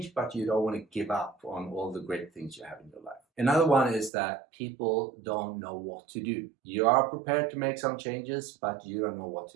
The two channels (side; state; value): left; drops out; at 4.1 s